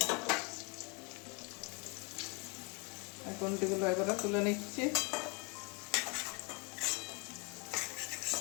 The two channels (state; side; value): quieter; right; 32.3 dB